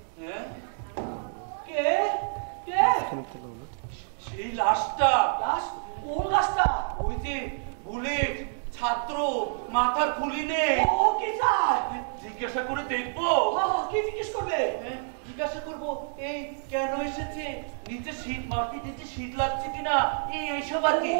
কে কে? সেই লাশটা। লাশ? কোন লাশটা? ওই যে বুলেট ছাত্র, মাথার খুলি নেই। ও কি চায়? জিজ্ঞাসা করে দেখবো। কি জিজ্ঞেস করবে? জিজ্ঞাসা করবো এই কেন এসেছে, নিচে শীত, মাটির নিচে শীত লাগছে কিনা, এইসব আর কি।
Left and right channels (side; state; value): left; silent; digital silence